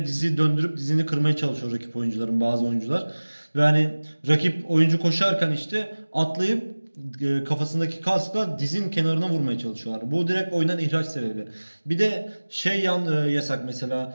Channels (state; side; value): inverted; both; correlation -1.00